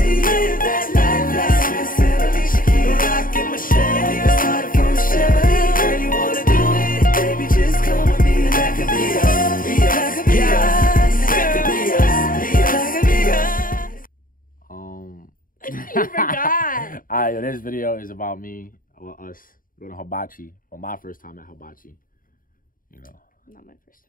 that life like Smith and Alicia Keys. Rockin' Michelle, you started from Michelle. Girl, you wanna do it? Baby, just come with me. That could be us, be us, that could be us. That could be us, be us, be us. You forgot. Alright, this video is about me, well, us going to Hibachi. Well, my first time at Hibachi. You know. Not my first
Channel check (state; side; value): late; right; 0.40 ms